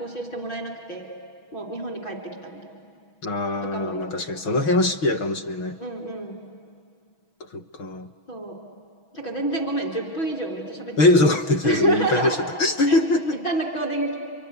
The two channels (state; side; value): late; right; 6.2 ms